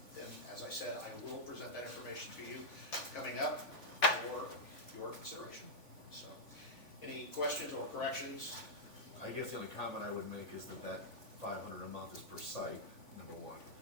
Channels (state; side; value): late; right; 3.5 ms